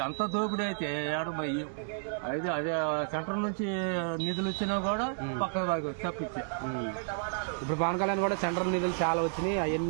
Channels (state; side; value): silent; left; 57 dB below the other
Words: అంత దోపిడీ అయితే ఏడు. మరి అయితే అదే సెంటర్ నుంచి నిధులు వచ్చినా కూడా పక్క తప్పించా. ఇప్పుడు పవన్ కళ్యాణ్ కూడా సెంట్రల్ నిధులు చాలా వచ్చినాయి.